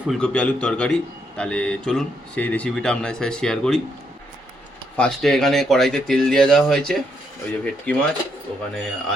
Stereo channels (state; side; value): normal; both; correlation 0.76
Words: ফুলকপি আলুর তরকারি। তাহলে চলুন সেই রেসিপিটা আপনাদের সাথে শেয়ার করি। ফার্স্টে এখানে কড়াইতে তেল দিয়ে দেওয়া হয়েছে, ওই যে ভেটকি মাছ, ওখানে